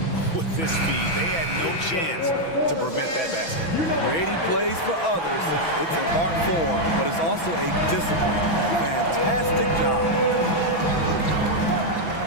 with this speed. They had no chance to prevent that basket. Creating plays for others. It's an art form, but it's also a discipline. Fantastic job.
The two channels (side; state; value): right; late; 6.0 ms